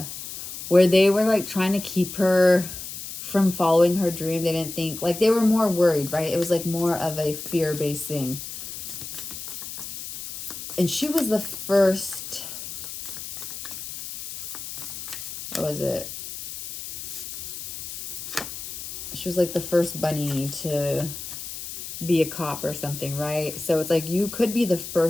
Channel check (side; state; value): left; noise; hiss, 9 dB below the sound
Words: where they were like trying to keep her from following her dream. They didn't think, like they were more worried, right? It was like more of a fear-based thing. And she was the first, what was it? She was like the first bunny to be a cop or something, right? So it's like you could be the